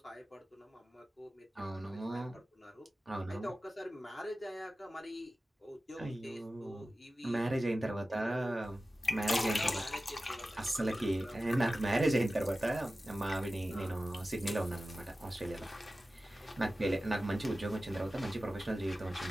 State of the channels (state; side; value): normal; both; correlation 0.95